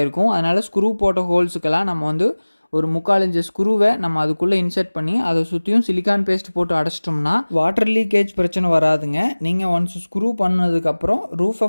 அதனால் ஸ்க்ரூ போட்ட ஹோல்ஸுக்கெல்லாம் நம்ம ஒரு 3/4 இன்ச்சு ஸ்க்ரூவை நம்ம அதுக்குள்ளே இன்சர்ட் பண்ணி அதை சுற்றியும் சிலிக்கான் பேஸ்ட் போட்டு அடைச்சிட்டோம்னா வாட்டர் லீக்கேஜ் பிரச்சனை வராதுங்க. நீங்கள் ஒன்ஸ் ஸ்க்ரூ பண்ணதுக்கப்புறம் ரூஃபை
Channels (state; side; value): inverted; both; correlation -1.00